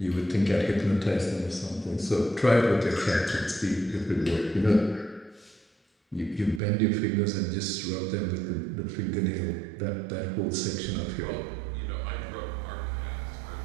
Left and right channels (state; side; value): drops out; left; at 6.6 s